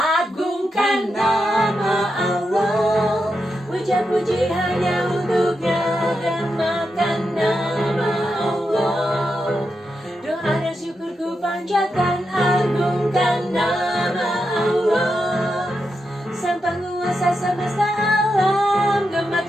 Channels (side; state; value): both; normal; correlation 0.86